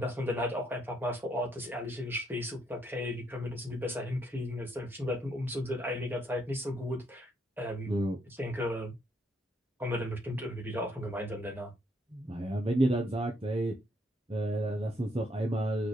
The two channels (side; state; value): both; normal; correlation 0.72